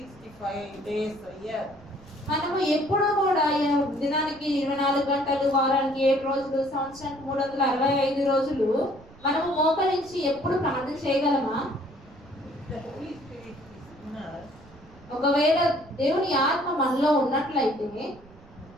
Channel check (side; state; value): right; noise; rumble, 23 dB below the sound